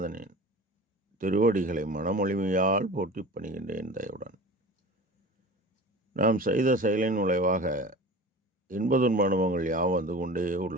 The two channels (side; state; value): both; normal; correlation 0.36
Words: திருவடிகளை மனமொழிமையால் போற்றி பணிகின்றேன் தயவுடன். நாம் செய்த செயலின் விளைவாக இன்ப துன்ப அனுபவங்கள் யாவும் வந்து கொண்டே